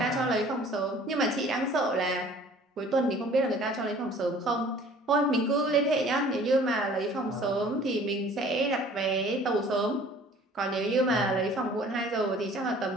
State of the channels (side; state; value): both; normal; correlation 0.51